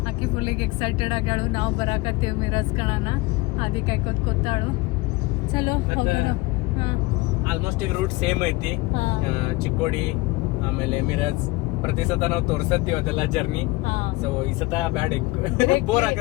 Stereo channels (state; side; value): quieter; right; 21.9 dB